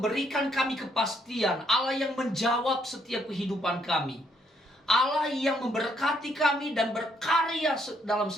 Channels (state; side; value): normal; both; correlation 0.71